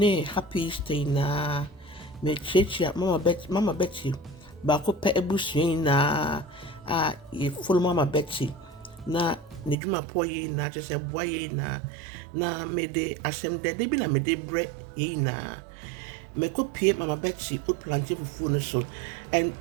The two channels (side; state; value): left; drops out; at 9.8 s